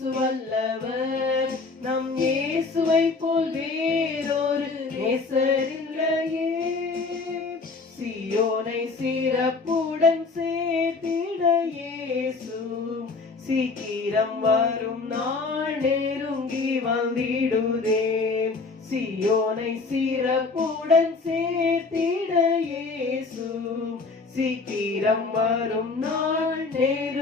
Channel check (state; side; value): quieter; right; 4.1 dB